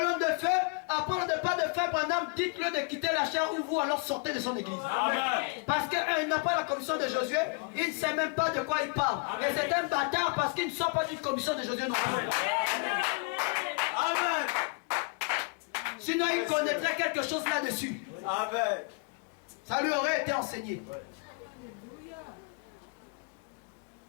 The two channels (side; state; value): right; quieter; 32.2 dB